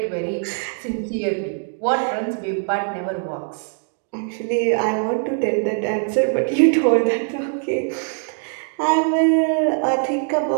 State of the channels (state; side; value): silent; left; 64 dB below the other